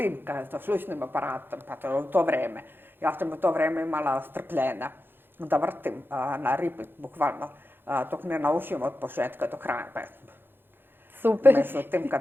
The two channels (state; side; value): late; left; 0.10 ms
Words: sa slušnim aparatom, pa to je u to vreme. Ja sam u to vreme imala strpljenja da vrtim na repeat, bukvalno, dok ne naučim od početka do kraja pesmu. Super, Međutim,